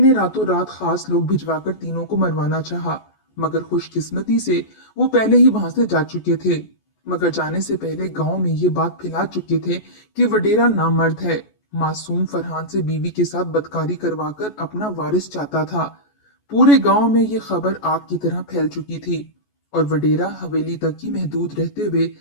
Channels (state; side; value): late; right; 14 ms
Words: रातों रात खास लोग भिजवाकर तीनों को मरवाना चाहा, मगर खुशकिस्मती से वो पहले ही वहां से जा चुके थे। मगर जाने से पहले गांव में ये बात फैला चुके थे कि वडेरा नामर्द है, मासूम फरहान से बीवी के साथ बदकारी करवाकर अपना वारिस चाहता था। पूरे गांव में ये खबर आग की तरह फैल चुकी थी और वडेरा हवेली तक ही महदूद रहते हुए